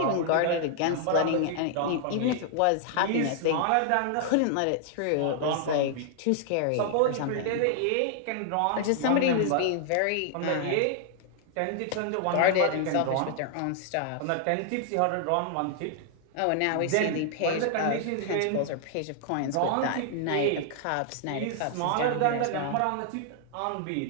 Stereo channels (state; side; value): different; both; correlation 0.00